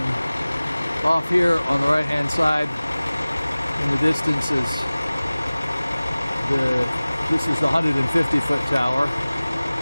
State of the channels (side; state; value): both; inverted; correlation -0.99